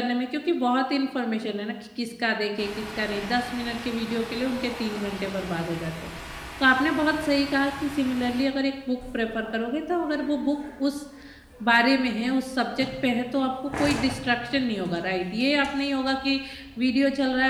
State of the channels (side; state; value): both; identical; correlation 1.00